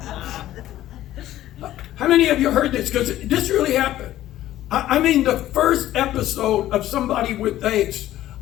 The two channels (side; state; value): right; quieter; 13.9 dB